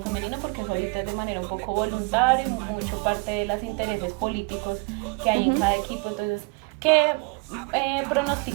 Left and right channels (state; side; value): quieter; left; 29.2 dB